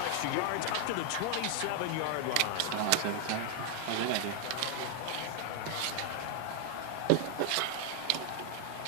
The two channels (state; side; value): different; both; correlation 0.00